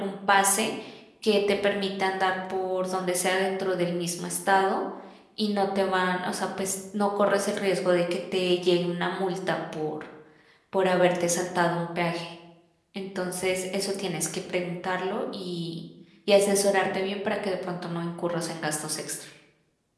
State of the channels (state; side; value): identical; both; correlation 1.00